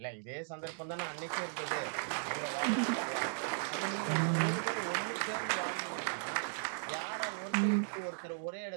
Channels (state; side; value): silent; left; digital silence